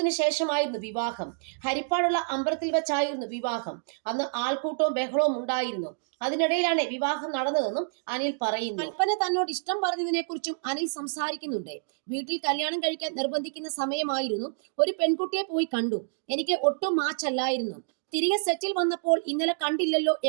ശേഷമായിരുന്നു വിവാഹം. ഹരിപ്പാടുള്ള അമ്പലത്തിൽ വെച്ചായിരുന്നു വിവാഹം. അന്ന് ആൾക്കൂട്ടവും ബഹളവും ഉണ്ടായിരുന്നു. അതിനിടയിലാണ് വിവാഹം നടന്നതെന്നും അനിൽ പറയുന്നു. കൽപ്പന തന്നോട് ഇഷ്ടം പറഞ്ഞതിനെ കുറിച്ചും അനിൽ സംസാരിക്കുന്നുണ്ട്. വീട്ടിൽ കല്യാണം കഴിക്കാൻ നിർബന്ധിക്കുന്ന സമയമായിരുന്നു. ഒരു പെൺകുട്ടിയെ പോയി കണ്ടു. എനിക്ക് ഒട്ടും മാച്ചല്ലായിരുന്നു. തിരികെ സെറ്റിൽ വന്നപ്പോൾ ഇന്നലെ കണ്ടില്ലല്ലോ,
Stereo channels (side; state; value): left; silent; digital silence